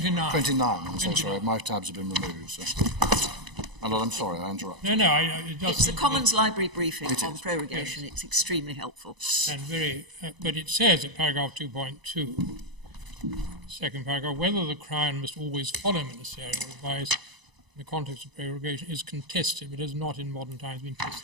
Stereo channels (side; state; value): left; late; 1.0 ms